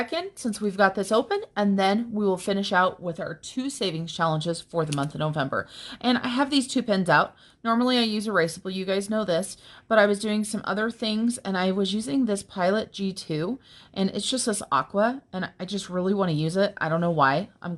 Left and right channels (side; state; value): both; identical; correlation 1.00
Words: since we've got this open, and then we will finish out with our 2 savings challenges for the month of November. And I have these 2 pens out. Normally I use erasable, you guys know this, but I was doing some other things and I was using this Pilot G2, and it's just this aqua, and I just really want to use it. I don't know why. I'm